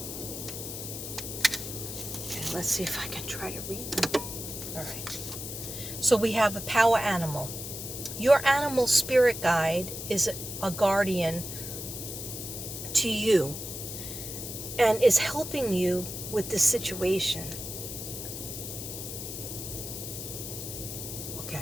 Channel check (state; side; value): noise; left; hiss, 7 dB below the sound